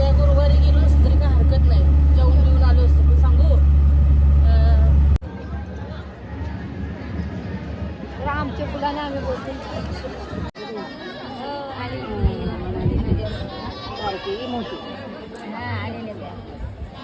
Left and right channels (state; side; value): identical; both; correlation 1.00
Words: आमच्या पुढाने आम्ही बोलतो मोठी